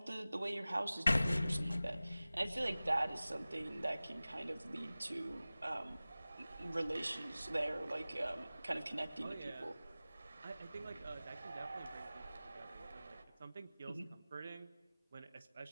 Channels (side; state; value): both; inverted; correlation -0.97